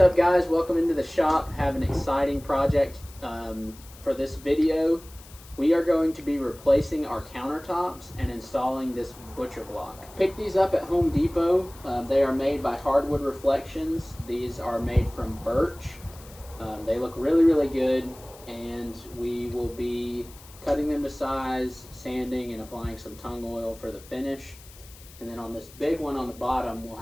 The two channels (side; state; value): left; noise; hiss, 21 dB below the sound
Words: guys? Welcome into the shop. Have an exciting project for this video. We are going to be replacing our countertops and installing this butcher block. Pick these up at Home Depot. They are made by Hardwood Reflections. These are made from birch. They look really good, and we will be cutting them to size, sanding, and applying some tung oil for the finish. And then on this big one on the bottom, we'll